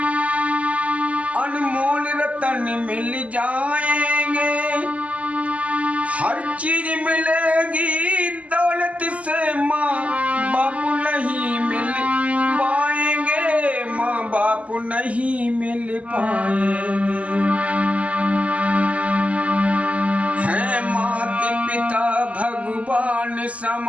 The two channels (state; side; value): late; left; 0.068 ms